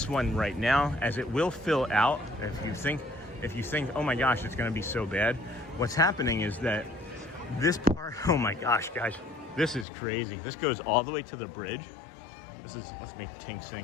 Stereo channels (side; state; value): right; drops out; at 9.9 s